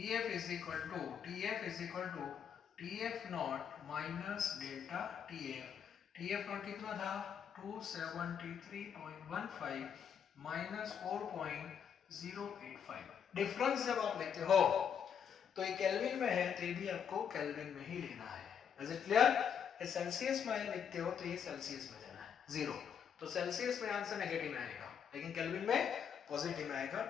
is equal to TF naught minus delta TF। TF naught कितना था 273.15 माइनस 4.085। डिफरेंस जब आप लेते हो तो ये केल्विन में है, तो ये भी आपको केल्विन में ही लेना है। Is it clear? ये सेल्सियस में लिखते हो तो ये सेल्सियस में लेना है 0, तो सेल्सियस में आंसर नेगेटिव में आएगा, लेकिन केल्विन में पॉजिटिव में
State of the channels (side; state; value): right; quieter; 7.8 dB